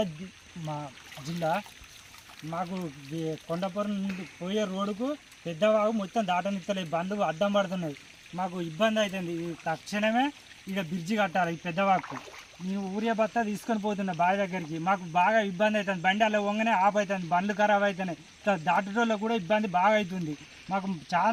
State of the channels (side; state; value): both; identical; correlation 1.00